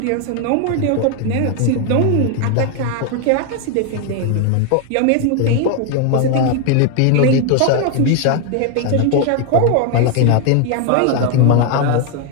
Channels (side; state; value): both; different; correlation 0.01